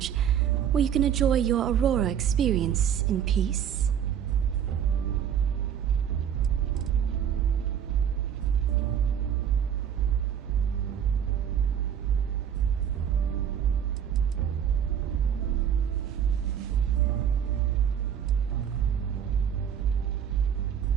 where you can enjoy your Aurora experience in peace.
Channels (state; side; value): quieter; left; 8.9 dB